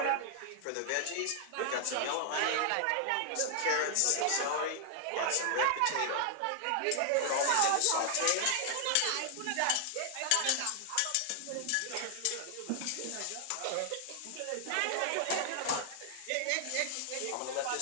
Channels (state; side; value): different; both; correlation 0.00